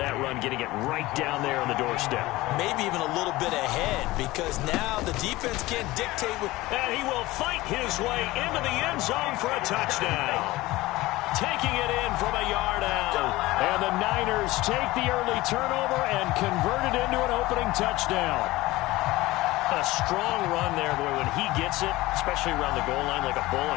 run, getting it right down there on the doorstep. Maybe even a little bit ahead, because now the defense can't dictate. And he will fight his way into the end zone for a touchdown. Taking it in from a yard out. And the Niners take the early turnover and convert it into an opening touchdown. A strong run there, boy, when he gets it, especially around the goal line, like a bull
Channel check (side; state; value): right; quieter; 19.0 dB